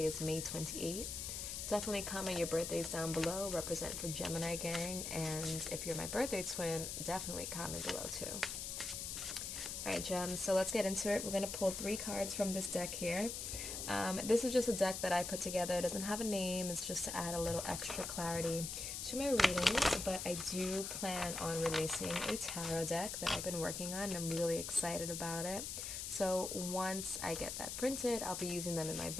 is May 28th. Definitely comment your birthdays down below, represent for Gemini gang, and if you're my birthday twin, definitely comment below too. Alright, gems, so let's get into it. We're going to pull 3 cards from this deck here. This is just a deck that I put together. It doesn't have a name. It's just to add a little extra clarity to my readings, but I do plan on releasing a tarot deck that I've been working on, and I'm really excited about it. So once I get that printed, I'll be using them in my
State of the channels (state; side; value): noise; left; hiss, 5 dB below the sound